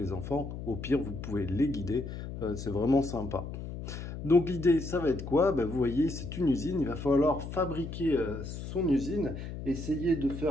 enfants. Au pire, vous pouvez les guider. C'est vraiment sympa. Donc l'idée, ça va être quoi? Vous voyez, c'est une usine. Il va falloir fabriquer son usine, essayer de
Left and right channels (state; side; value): noise; left; hum, 8 dB below the sound